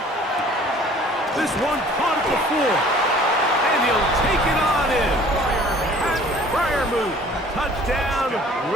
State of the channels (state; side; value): normal; both; correlation 0.52